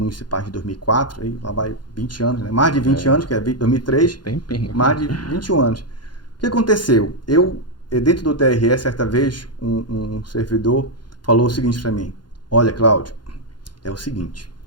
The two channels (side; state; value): right; late; 0.71 ms